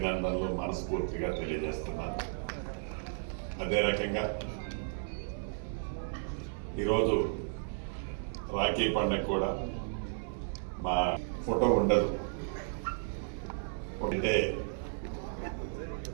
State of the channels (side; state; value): left; silent; 55 dB below the other